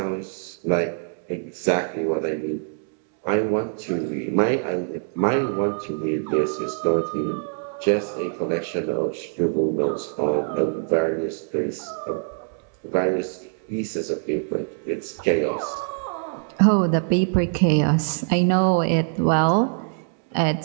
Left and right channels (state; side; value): silent; left; digital silence